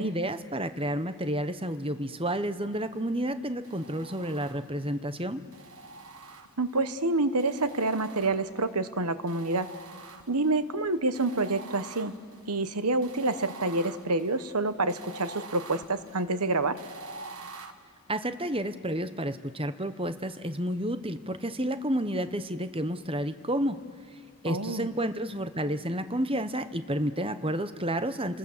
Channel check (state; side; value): normal; both; correlation 0.11